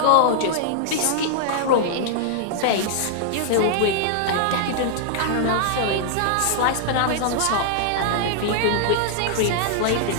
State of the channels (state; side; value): different; both; correlation -0.01